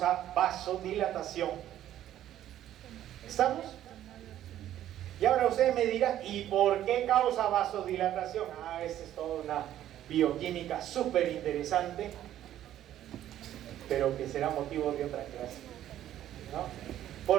vasodilatación. ¿Estamos? Y ahora usted me dirá, ¿y por qué causa vasodilatación? Esta es toda una bioquímica súper interesante, pero que será motivo de otra clase, ¿no?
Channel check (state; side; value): quieter; left; 12.1 dB